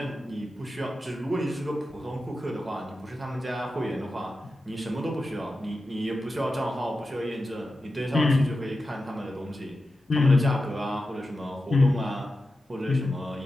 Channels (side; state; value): both; normal; correlation 0.91